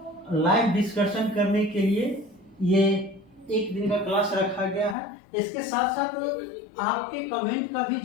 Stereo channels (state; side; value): drops out; right; at 5.0 s